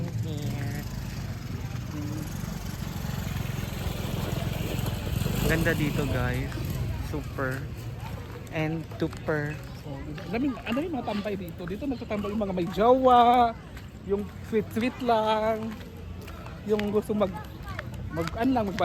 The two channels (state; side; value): identical; both; correlation 1.00